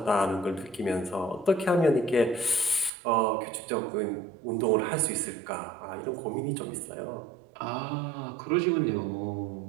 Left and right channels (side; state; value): left; drops out; at 2.9 s